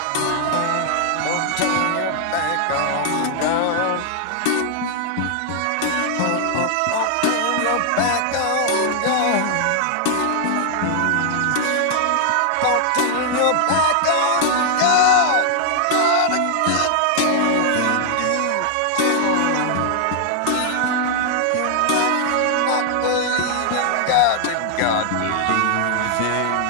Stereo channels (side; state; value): both; different; correlation 0.00